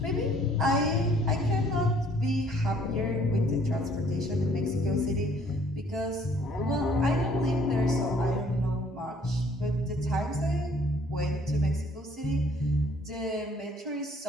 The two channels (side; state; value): both; normal; correlation 0.59